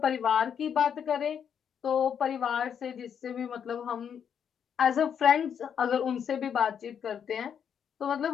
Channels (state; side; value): quieter; right; 7.9 dB